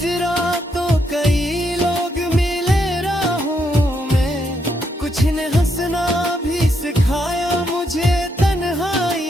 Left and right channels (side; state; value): both; normal; correlation 0.77